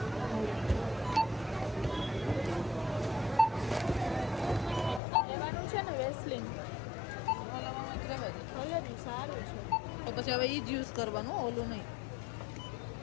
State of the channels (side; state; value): right; drops out; at 5.0 s